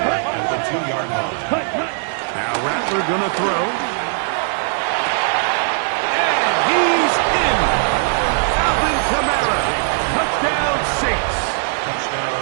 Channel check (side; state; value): left; silent; digital silence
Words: at the 2-yard line. Hut, hut. Now Rattler going to throw. And he's in. Alvin Kamara. Touchdown Saints.